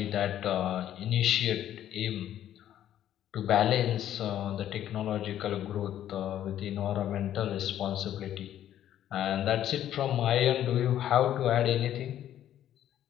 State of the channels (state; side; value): quieter; right; 11.4 dB